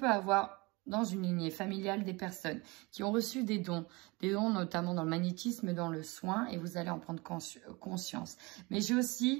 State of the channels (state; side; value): quieter; left; 25.1 dB